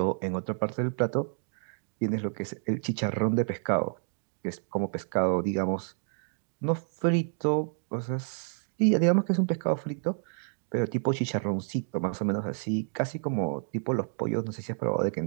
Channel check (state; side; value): silent; left; 56 dB below the other